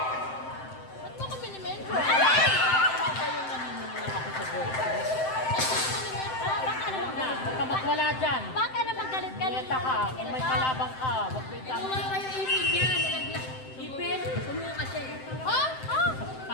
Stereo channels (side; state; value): right; late; 7.7 ms